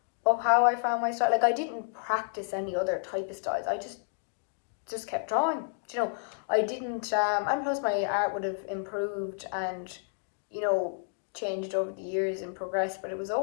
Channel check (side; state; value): right; silent; digital silence